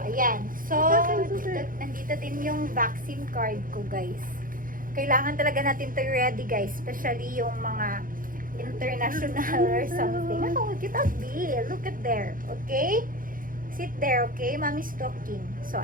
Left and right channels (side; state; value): left; late; 0.40 ms